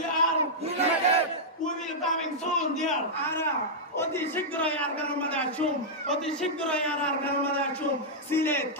are united we will coming soon dear ara অতি শীঘ্রই আর গানের মধ্যে আসুন অতি শীঘ্রই আর গানের মধ্যে আসুন সিলে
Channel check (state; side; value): normal; both; correlation -0.08